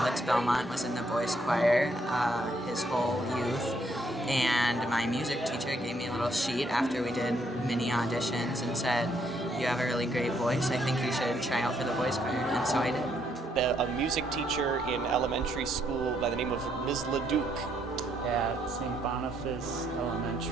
Belmont, was in the boys choir his whole youth, and my music teacher gave me a little sheet after we did mini auditions and said, "You have a really great voice, I think you should try out for the boys choir," and so I did. A music teacher in elementary school by the name of Ms. LeDuc. At St. Boniface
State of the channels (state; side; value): normal; both; correlation 0.72